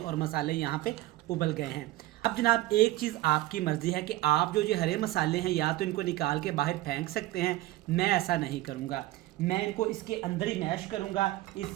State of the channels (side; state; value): left; quieter; 16.9 dB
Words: मसाले यहाँ पे उबल गए हैं। अब जनाब एक चीज़ आपकी मर्ज़ी है कि आप जो हरे मसाले हैं या तो इनको निकाल के बाहर फेंक सकते हैं, मैं ऐसा नहीं करूँगा। मैं इनको इसके अंदर ही मैश करूँगा,